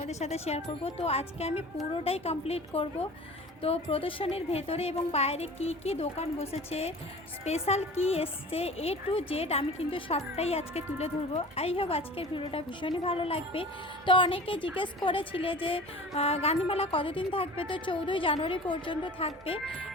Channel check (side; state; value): both; normal; correlation 0.40